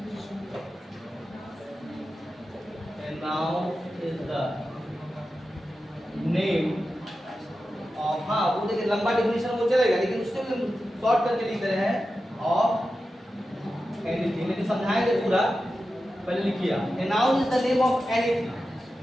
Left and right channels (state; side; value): normal; both; correlation 0.92